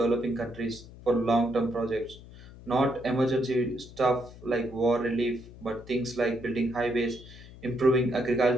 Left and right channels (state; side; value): noise; left; hum, 18 dB below the sound